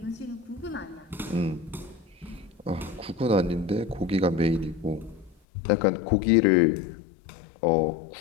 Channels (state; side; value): drops out; right; at 5.4 s